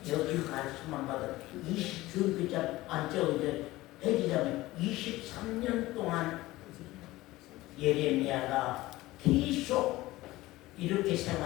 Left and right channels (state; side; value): quieter; right; 18.2 dB